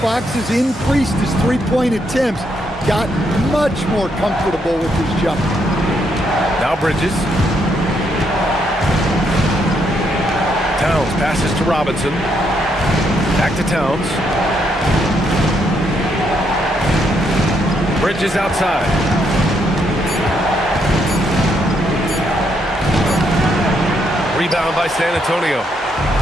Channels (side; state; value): both; normal; correlation 0.75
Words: Fox has increased his three-point attempts, gotten much more comfortable with his jump. Now Bridges. Towns passes to Robinson. Back to Towns. Bridges outside. Rebound by San Antonio.